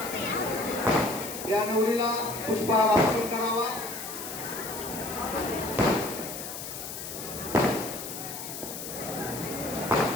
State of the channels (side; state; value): left; noise; hiss, 8 dB below the sound